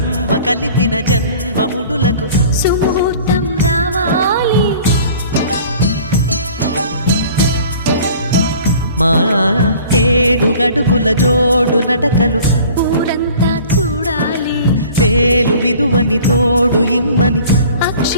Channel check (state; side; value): inverted; both; correlation -0.48